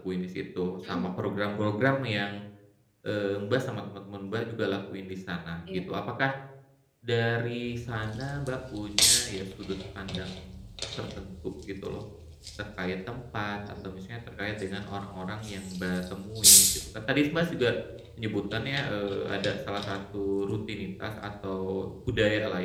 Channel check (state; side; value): identical; both; correlation 1.00